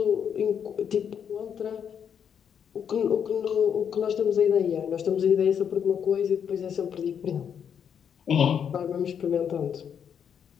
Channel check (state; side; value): quieter; right; 7.9 dB